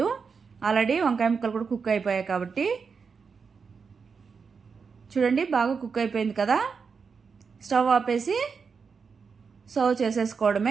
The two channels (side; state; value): left; quieter; 5.6 dB